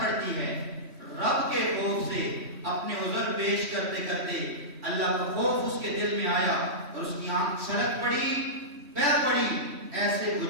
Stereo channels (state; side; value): late; left; 3.1 ms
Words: ہے رب کے خوف سے، اپنے عذر پیش کرتے کرتے اللہ کا خوف اس کے دل میں آیا اور اس کی آنکھ چھلک پڑی، بہہ پڑی، ایسے